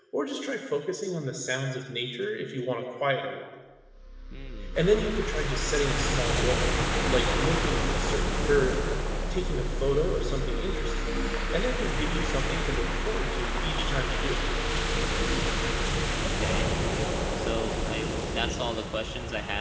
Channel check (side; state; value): both; identical; correlation 1.00